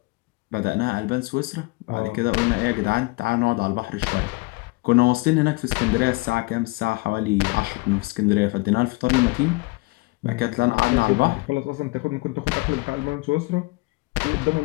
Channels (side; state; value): right; quieter; 25.0 dB